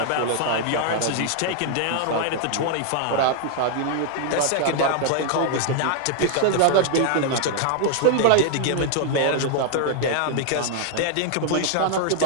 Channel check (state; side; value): different; both; correlation 0.00